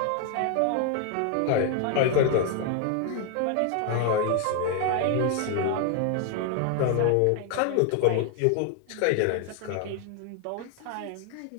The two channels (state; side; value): different; both; correlation 0.01